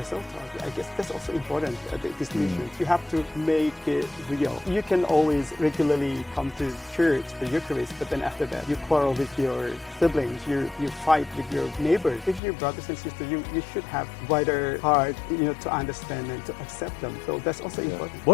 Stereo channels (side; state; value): right; drops out; at 12.4 s